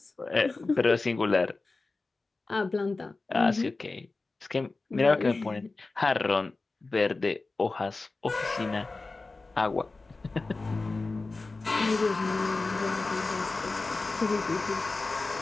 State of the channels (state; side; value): quieter; right; 3.6 dB